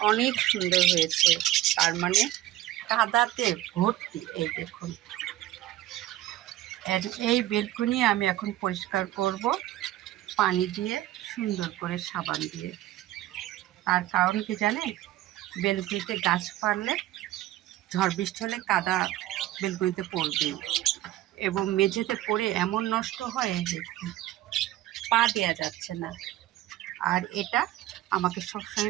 অনেক সুন্দর হয়েছে, তার মানে কাদাতে ভর্তি। এই দেখুন, এই বেলকনি আমি এখন পরিষ্কার করব পানি দিয়ে, সুন্দর করে সাবান দিয়ে। তার কারণ কি জানেন? বেলকুনিতে গাছ পারলে ঝড় বৃষ্টি হলে কাদা বেলকুনিতে পড়বে এবং মেঝেতে পড়ে এমন নষ্ট হয় যে পা দেওয়া যাচ্ছে না। আর এটা আমাকে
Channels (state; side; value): quieter; left; 14.6 dB